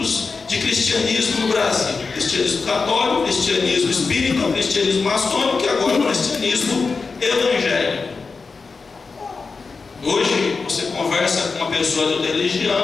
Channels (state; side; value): quieter; right; 4.5 dB